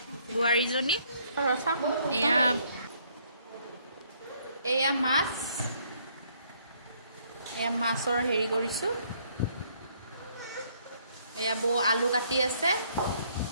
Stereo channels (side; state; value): both; inverted; correlation -0.66